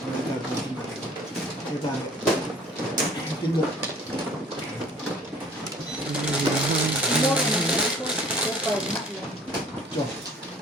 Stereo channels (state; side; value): normal; both; correlation 0.51